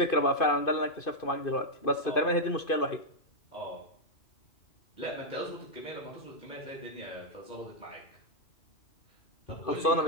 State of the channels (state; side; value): late; right; 2.5 ms